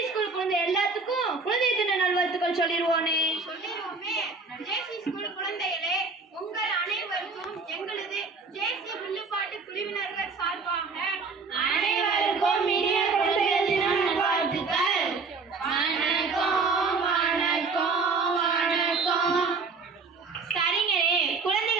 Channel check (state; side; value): quieter; left; 4.4 dB